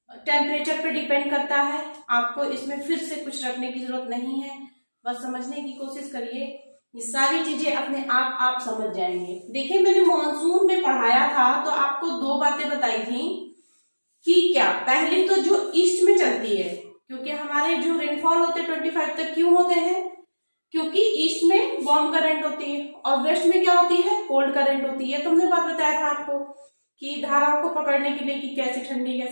टेम्परेचर पे डिपेंड करता है। आपको इसमें फिर से कुछ रखने की जरूरत नहीं है, बस समझने की कोशिश करिए, ये सारी चीजें अपने आप समझ जाएंगे। देखिए मैंने मॉनसून में पढ़ाया था तो आपको दो बातें बताई थी कि क्या, पहली तो जो ईस्ट में चलती है, क्योंकि हमारे जो रेनफॉल होते हैं 25 तक क्यों होते हैं, क्योंकि ईस्ट में वार्म करंट होती है और वेस्ट में क्या होती है, कोल्ड करंट होती है। तुमने बात बताया था आपको कि धाराओं को पकड़ने के लिए कि कैसे ठंडी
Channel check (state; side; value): inverted; both; correlation -1.00